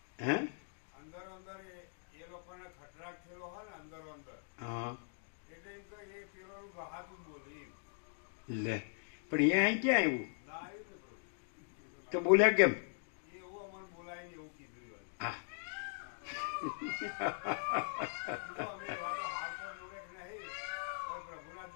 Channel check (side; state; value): right; silent; digital silence